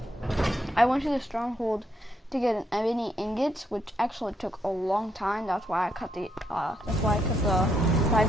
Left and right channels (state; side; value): normal; both; correlation 0.77